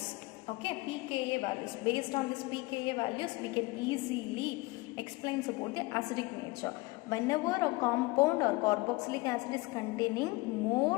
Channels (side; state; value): right; quieter; 22.8 dB